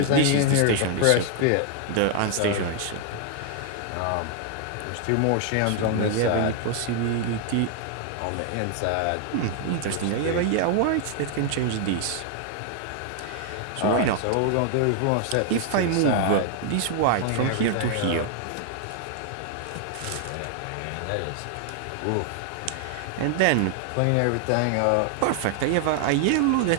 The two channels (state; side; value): different; both; correlation 0.00